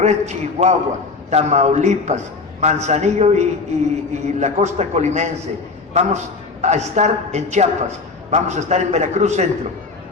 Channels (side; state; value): right; quieter; 4.2 dB